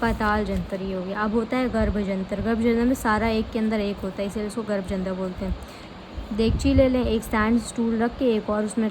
ये हो गया। अब होता है गर्भ जंतर। गर्भ जंतर में सारा एक के अंदर एक होता है, इसलिए इसको गर्भ जंतर बोलते हैं। देगची ले लें, एक स्टैंड स्टूल रख के एक और उसमें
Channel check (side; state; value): both; identical; correlation 1.00